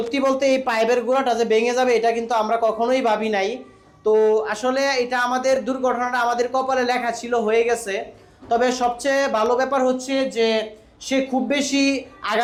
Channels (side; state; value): both; identical; correlation 1.00